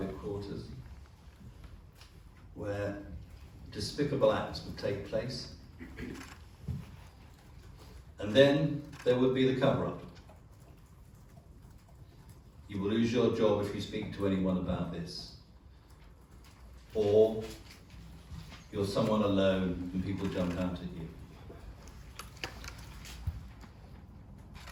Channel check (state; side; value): identical; both; correlation 1.00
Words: quarters, where despicable acts would take place. And then there would be the cover-up. You will lose your job if you speak to anyone about this. Or you're someone alone and people jump out at you.